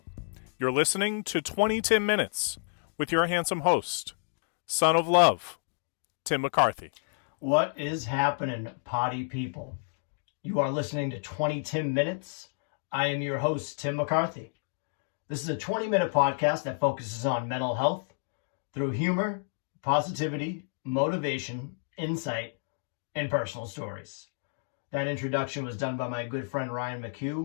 You're listening to 20TIMinutes with your handsome host, son of love, Tim McCarthy. What is happening, potty people? You are listening to 20TIMinutes. I am your host, Tim McCarthy. This is a 20-minute podcast that focuses on mental health through humor, positivity, motivation, insight, and personal stories. That introduction was done by my good friend Ryan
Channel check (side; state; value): right; silent; digital silence